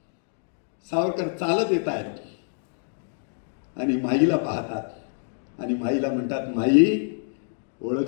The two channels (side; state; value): right; silent; digital silence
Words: सावरकर चालत येत आहेत आणि माईला पाहतात आणि माईला म्हणतात, माई